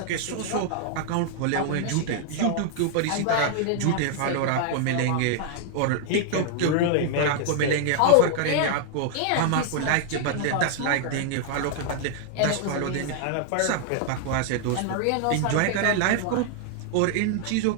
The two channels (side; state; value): both; different; correlation 0.00